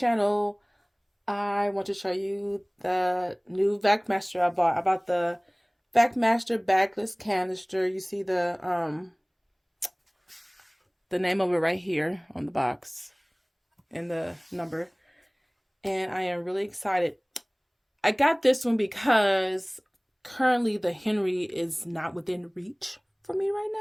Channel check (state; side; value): identical; both; correlation 1.00